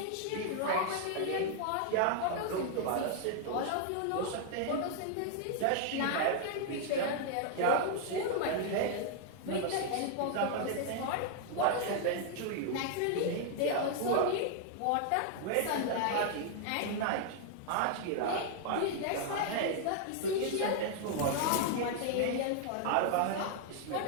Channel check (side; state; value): both; different; correlation 0.00